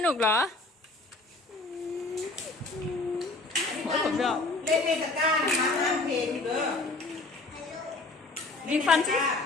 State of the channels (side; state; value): right; quieter; 3.1 dB